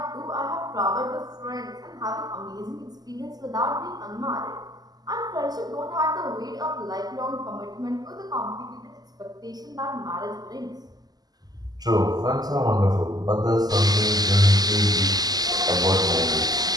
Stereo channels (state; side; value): late; left; 0.19 ms